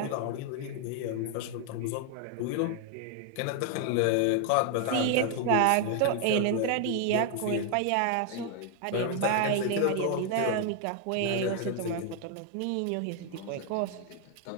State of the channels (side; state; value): both; different; correlation 0.00